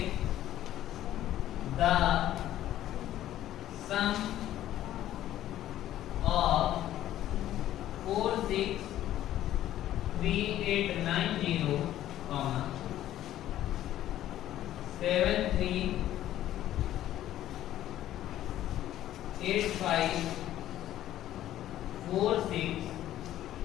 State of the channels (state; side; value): quieter; right; 12.9 dB